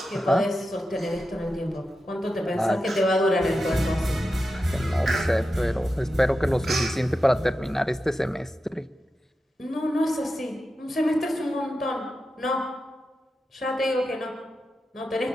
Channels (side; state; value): both; normal; correlation 0.90